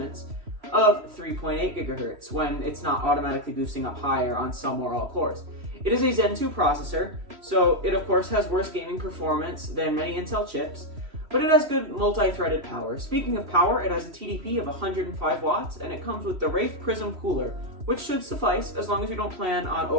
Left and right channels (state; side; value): late; left; 3.0 ms